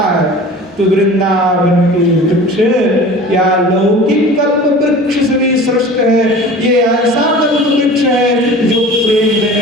है। तो वृंदावन के वृक्ष या लौकिक कल्प वृक्ष से भी श्रेष्ठ है। ये ऐसा कल्प वृक्ष है जो प्रेम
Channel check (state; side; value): normal; both; correlation 0.40